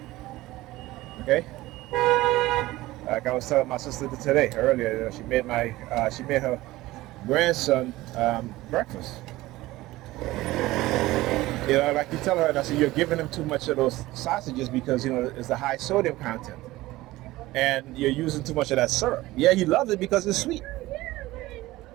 Okay? Like I was telling my sister today, earlier, she made her grandson breakfast. Like you tell her, and I said, you're giving him too much of those sausages because it's the high sodium content, and you're using too much of that syrup. Yeah, he loves it because it's sweet.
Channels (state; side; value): quieter; left; 17.9 dB